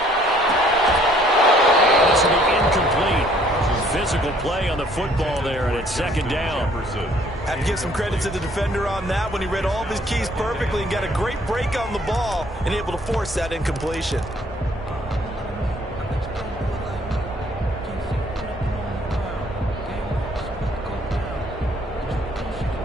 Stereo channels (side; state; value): both; normal; correlation 0.61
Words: And this will be incomplete. Physical play on the football there, and it's 2nd down. Have to give some credit to the defender on that when he read all of his keys perfectly and got a great break on the ball and able to force that incompletion.